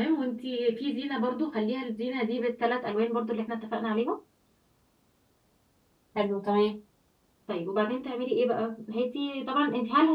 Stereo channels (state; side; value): identical; both; correlation 1.00